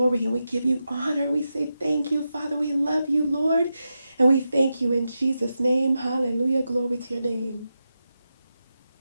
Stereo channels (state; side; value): inverted; both; correlation -0.89